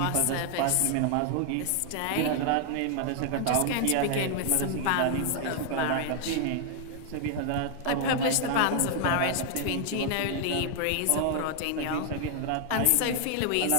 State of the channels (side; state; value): both; different; correlation 0.00